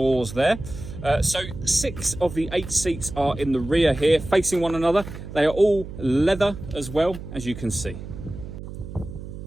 there. So 6 of the 8 seats are in the rear here, facing one another. They are all leather as well, as you can see.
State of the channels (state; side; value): noise; right; hum, 11 dB below the sound